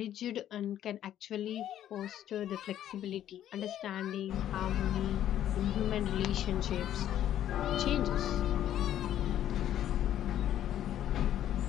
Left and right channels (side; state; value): right; quieter; 11.4 dB